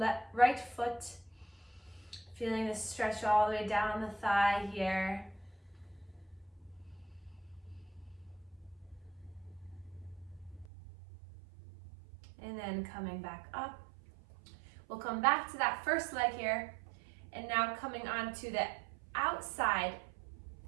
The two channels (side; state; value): left; drops out; at 10.7 s